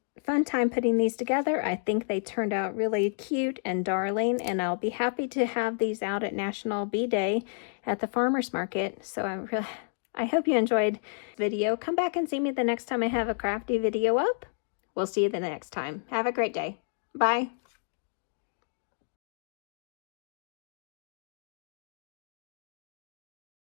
time putting these together. I think they turned out really cute and darling, and I'll be happy to have these out at National Bee Day at the farmer's market. So I hope you enjoyed the video. Come back and see me the next time I have a crafty video up. We'll see you the next time. Have a great day. Bye.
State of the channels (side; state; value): right; silent; digital silence